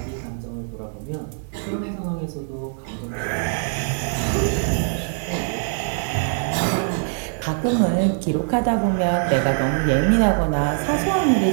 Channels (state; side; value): silent; left; digital silence